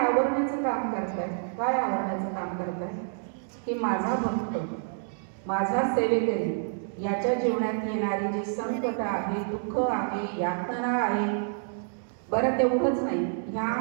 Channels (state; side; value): silent; left; 59 dB below the other